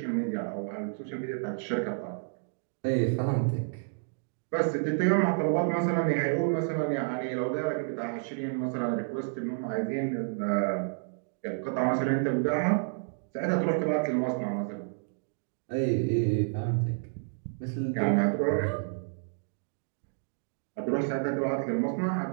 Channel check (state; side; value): silent; left; digital silence